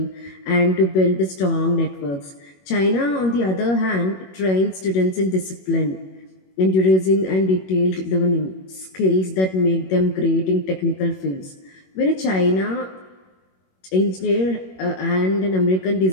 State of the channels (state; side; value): late; right; 21 ms